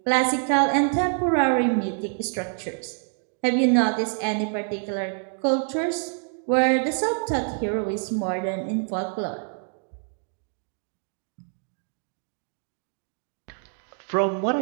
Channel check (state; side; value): silent; left; 56 dB below the other